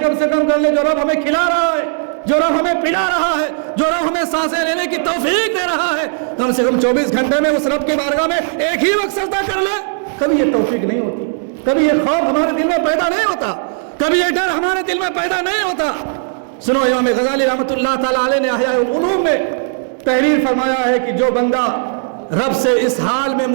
کم سے کم کر لے. جو رب ہمیں کھلا رہا ہے، جو رب ہمیں پلا رہا ہے، جو رب ہمیں سانسیں لینے کی توفیق دے رہا ہے، کم سے کم 24 گھنٹے میں اس رب کی بارگاہ میں ایک ہی وقت سجدہ کر لے. کبھی یہ توفیق نہیں ہوتی، کبھی یہ خوف ہمارے دل میں پیدا نہیں ہوتا، کبھی یہ ڈر ہمارے دل میں پیدا نہیں ہوتا. سنو امام غزالی رحمۃ اللہ تعالیٰ علیہ نے احیاء العلوم میں تحریر فرمایا ہے کہ جو بندہ رب سے اس حال میں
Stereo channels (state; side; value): silent; left; 69 dB below the other